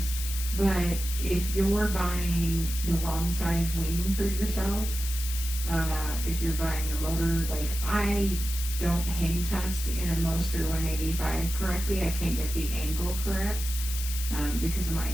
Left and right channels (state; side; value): noise; left; hiss, 7 dB below the sound